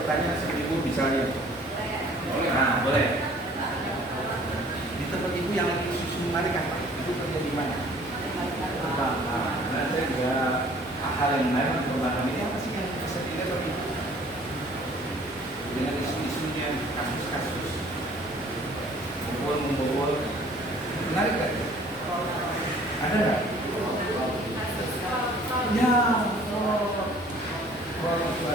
seperti Ibu misalnya? Nah boleh. Di tempat Ibu yang lagi isu menarik apa? Ibu kerja di mana? Nah saya juga hal yang menarik untuk memahami ini apa sih yang bisa dilihat Bapak Ibu? Dengan isu-isunya, kasus-kasus membobol menarik kan? Ada nggak? Ya, kalau itu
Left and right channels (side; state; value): both; normal; correlation 0.54